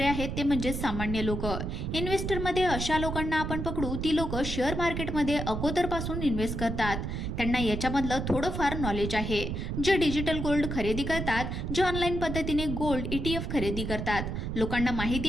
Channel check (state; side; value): noise; right; rumble, 3 dB below the sound